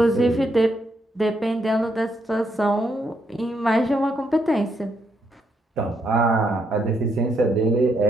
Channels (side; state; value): both; normal; correlation 0.76